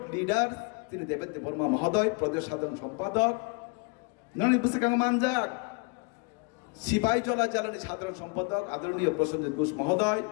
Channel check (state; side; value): quieter; right; 31.1 dB